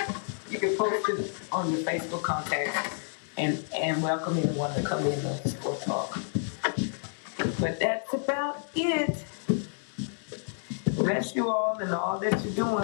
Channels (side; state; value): right; silent; digital silence